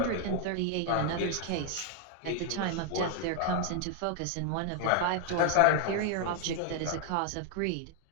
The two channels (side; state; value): both; different; correlation 0.00